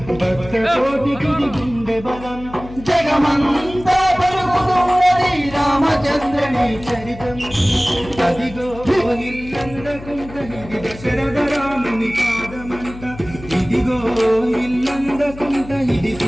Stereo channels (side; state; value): left; noise; hum, 15 dB below the sound